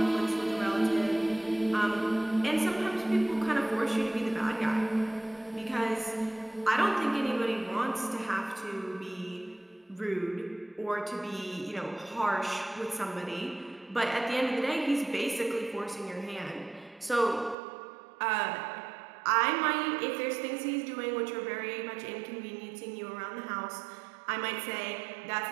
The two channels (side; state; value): left; drops out; at 17.6 s